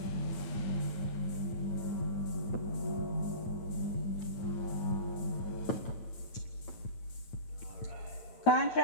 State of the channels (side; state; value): right; late; 9.2 ms